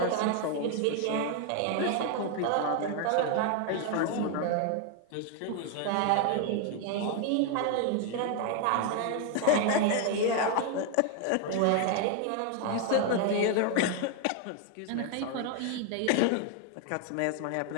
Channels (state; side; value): different; both; correlation 0.01